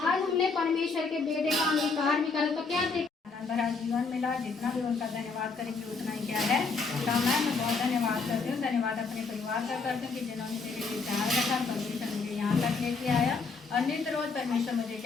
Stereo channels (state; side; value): quieter; right; 4.5 dB